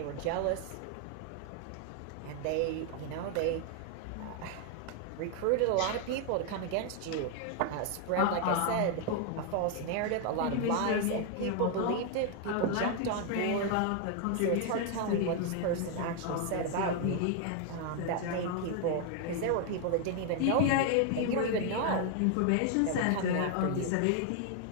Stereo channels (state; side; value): different; both; correlation 0.00